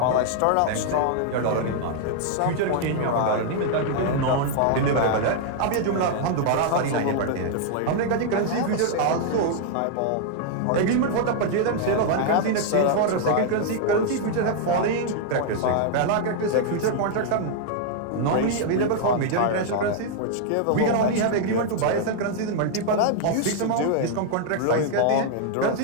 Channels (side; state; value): both; different; correlation 0.00